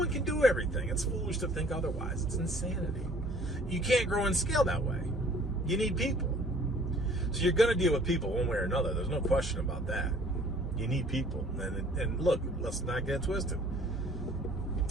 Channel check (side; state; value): both; normal; correlation 0.54